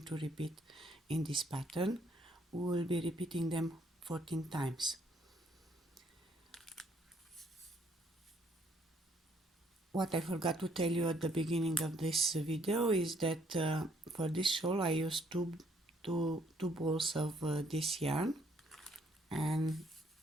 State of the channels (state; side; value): normal; both; correlation 0.66